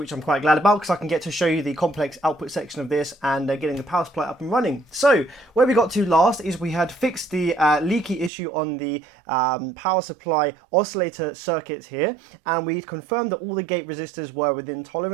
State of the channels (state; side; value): drops out; left; at 8.3 s